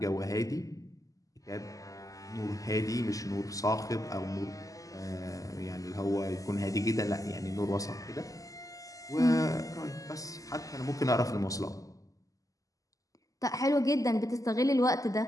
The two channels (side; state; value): right; late; 0.17 ms